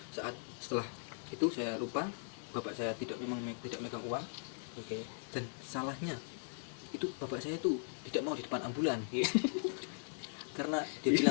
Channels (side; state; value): right; silent; digital silence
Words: saat setelah itu saya lupa, bapak saya tidak tidak megang uang. Oke. Dan salahnya itu bapak saya itu tidak mau di depan ambulan. Karena dia